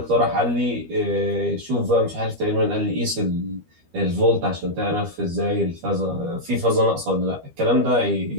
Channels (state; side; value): late; left; 12 ms